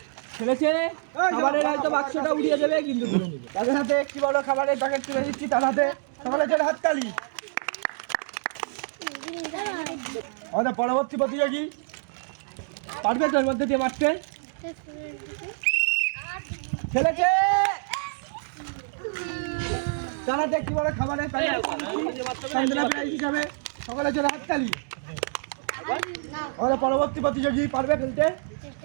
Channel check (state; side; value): silent; left; digital silence